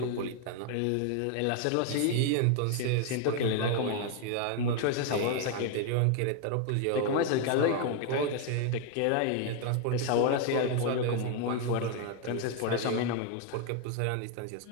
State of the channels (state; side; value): different; both; correlation 0.00